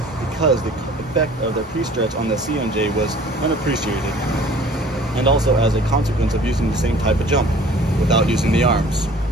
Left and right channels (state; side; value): normal; both; correlation 0.50